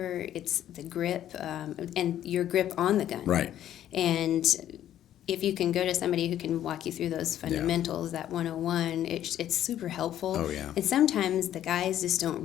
it's the grip, and your grip on the gun. Right. And if you can go to somebody who can walk you through those fundamentals, that 101, it's super helpful. Oh, yeah. And sometimes the guys just don't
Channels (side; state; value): right; quieter; 11.5 dB